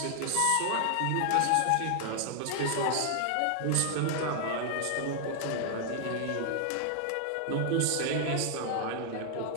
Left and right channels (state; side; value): different; both; correlation 0.00